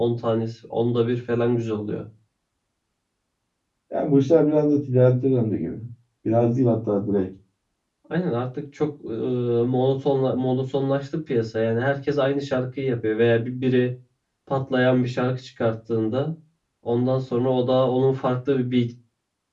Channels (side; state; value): both; identical; correlation 1.00